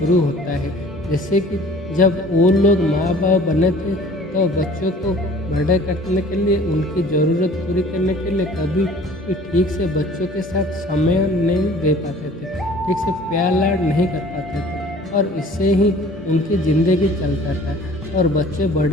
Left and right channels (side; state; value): both; normal; correlation 0.49